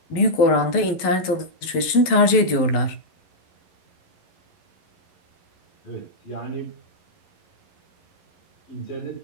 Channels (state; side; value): late; right; 11 ms